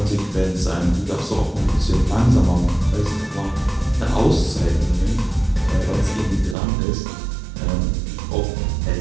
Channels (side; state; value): left; drops out; at 6.6 s